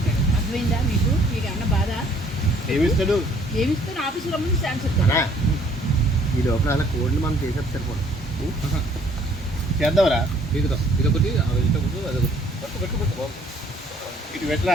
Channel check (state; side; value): normal; both; correlation 0.61